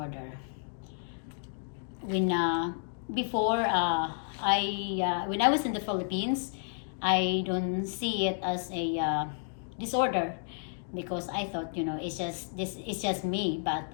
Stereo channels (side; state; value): right; silent; digital silence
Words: When before when I was in the Philippines, I don't see it as a disorder because I thought it's just me, but